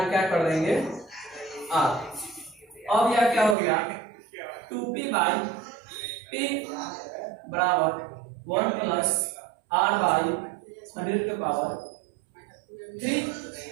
क्या कर देंगे r। अब यह क्या हो गया 2p बाई p बराबर 1 प्लस r बाई 100 के पावर 3,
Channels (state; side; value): drops out; left; at 3.6 s